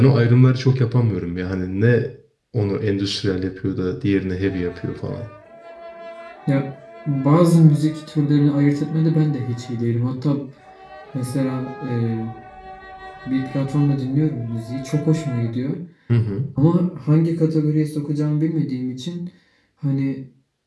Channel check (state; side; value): identical; both; correlation 1.00